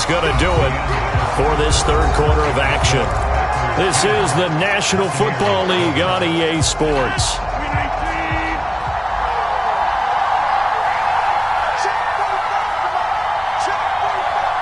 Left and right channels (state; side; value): identical; both; correlation 1.00